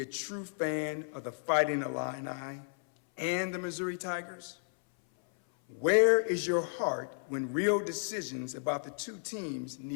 a true fan of the Fighting Illini and the Missouri Tigers? Where is your heart when real decisions about the two teams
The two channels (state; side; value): silent; right; 56 dB below the other